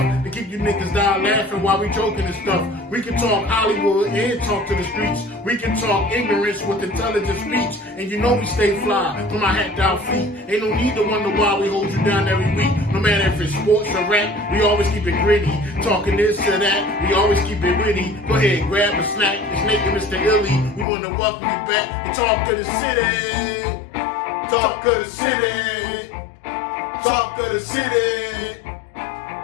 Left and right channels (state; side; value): drops out; right; at 20.9 s